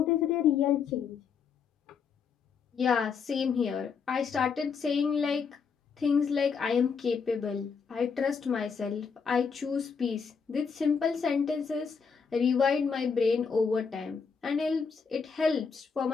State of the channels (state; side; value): quieter; right; 5.9 dB